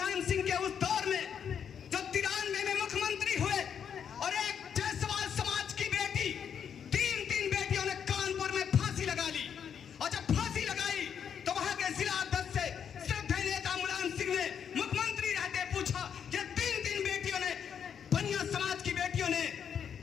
सिंह के उस दौर में जो 93 में मुख्यमंत्री हुए, और एक जायसवाल समाज की बेटी, 3 बेटियों ने कानपुर में फांसी लगा ली। और जब फांसी लगाई तो वहां के जिला अध्यक्ष से श्रद्धेय नेता मुलायम सिंह ने मुख्यमंत्री रहते पूछा कि 3 बेटियों ने, बनिया समाज की बेटियों ने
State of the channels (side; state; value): right; quieter; 7.8 dB